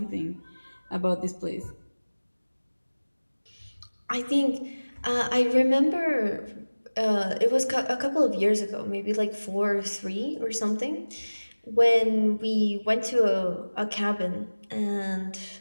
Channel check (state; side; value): inverted; both; correlation -1.00